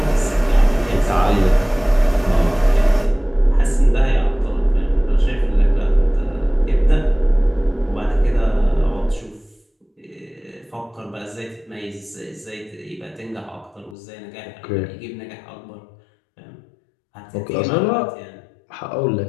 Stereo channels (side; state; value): right; drops out; at 14.0 s